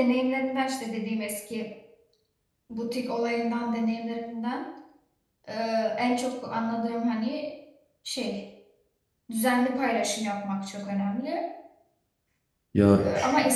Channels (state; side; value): identical; both; correlation 1.00